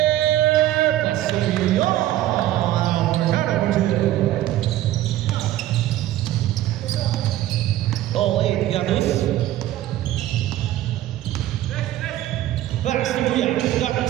Pass to Carrion. All 8, Gatus. Pass to Muya.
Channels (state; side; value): quieter; left; 14.0 dB